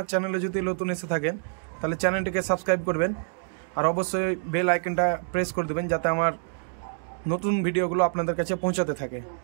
চ্যানেলে যদি নতুন এসে থাকেন তাহলে চ্যানেলটিকে সাবস্ক্রাইব করবেন, আর অবশ্যই বেল আইকনটা প্রেস করে দেবেন যাতে আমার নতুন ভিডিওগুলো আপনাদের কাছে পৌঁছাতে থাকে।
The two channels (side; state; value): left; silent; digital silence